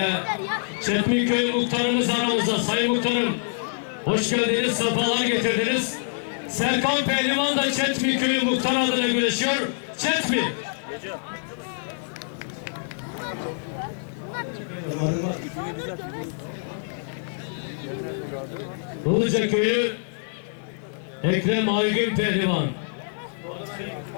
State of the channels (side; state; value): right; silent; digital silence